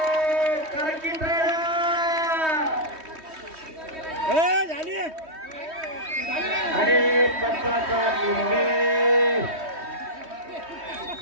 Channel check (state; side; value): late; left; 3.2 ms